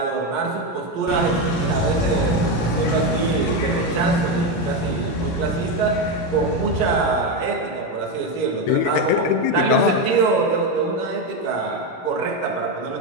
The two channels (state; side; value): late; right; 17 ms